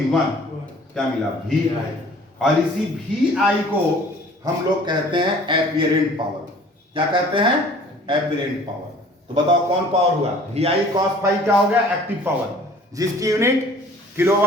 1, क्या मिला वी आई। और इसी वी आई को हम लोग कहते हैं एपिरेंट पावर। क्या कहते हैं? एपिरेंट पावर। तो बताओ कौन पावर हुआ? वी आई कॉस फाइव क्या हो गया? एक्टिव पावर, जिसकी यूनिट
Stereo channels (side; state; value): both; normal; correlation 0.51